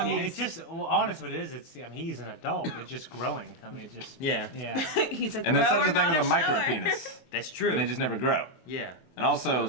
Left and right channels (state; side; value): late; right; 24 ms